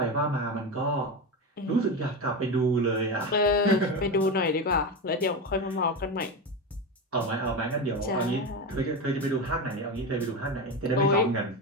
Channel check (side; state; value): both; normal; correlation 0.18